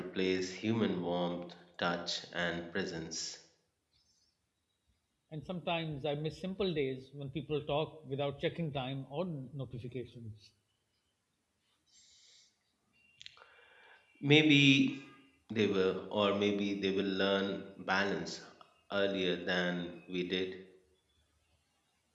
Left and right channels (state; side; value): identical; both; correlation 1.00